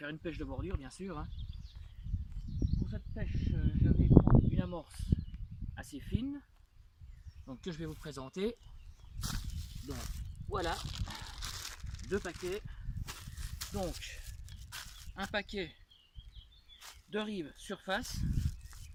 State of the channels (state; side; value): identical; both; correlation 1.00